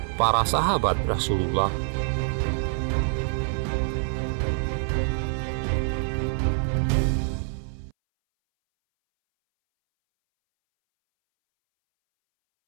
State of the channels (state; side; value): silent; left; 61 dB below the other